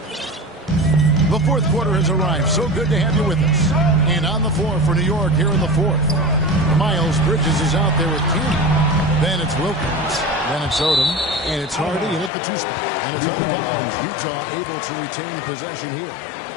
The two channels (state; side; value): drops out; right; at 12.3 s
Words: The fourth quarter has arrived. So good to have you with us. And on the floor for New York here in the fourth. Miles Bridges is out there with King. Then it's Wilkins. Then it's Odom. And it's Hardy and at the two spot. And it's out of bounds. Utah able to retain possession here.